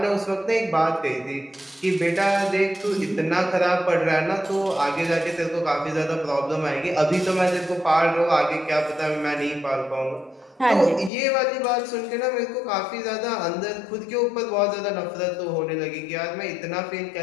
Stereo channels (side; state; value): right; drops out; at 11.1 s